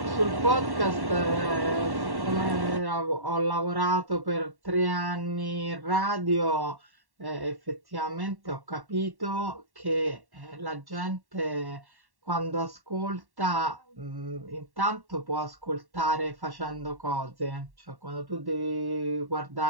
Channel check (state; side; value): late; left; 1.1 ms